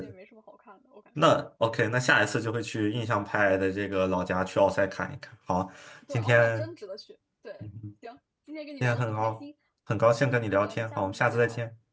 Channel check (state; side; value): identical; both; correlation 1.00